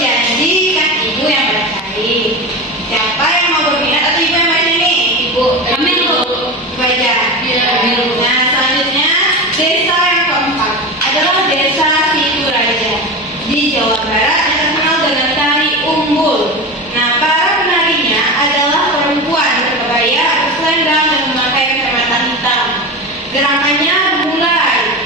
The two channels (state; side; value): normal; both; correlation 0.24